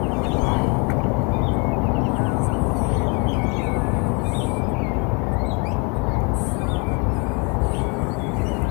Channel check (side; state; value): right; quieter; 32.9 dB